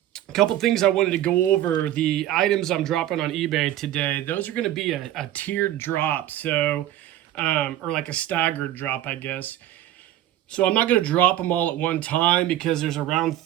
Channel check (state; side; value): quieter; left; 13.0 dB